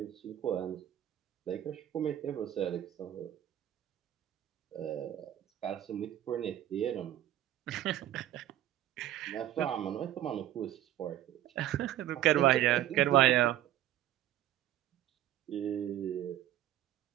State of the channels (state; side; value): quieter; left; 12.6 dB